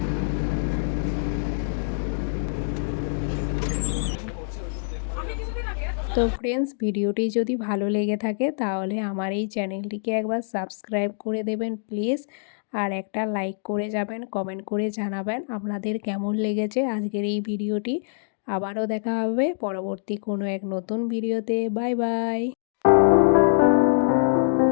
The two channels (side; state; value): right; silent; digital silence